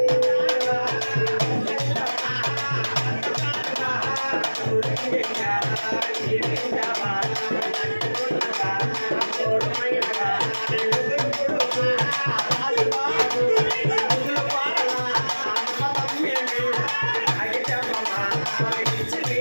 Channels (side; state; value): both; inverted; correlation -1.00